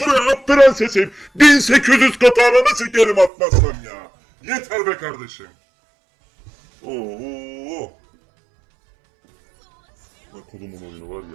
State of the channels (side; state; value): left; drops out; at 3.3 s